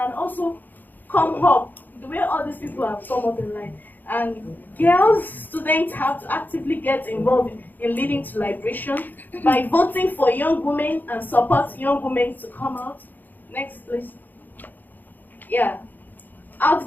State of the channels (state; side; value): late; right; 0.086 ms